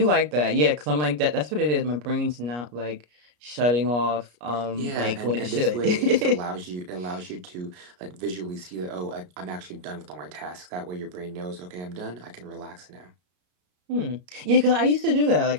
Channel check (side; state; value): left; late; 33 ms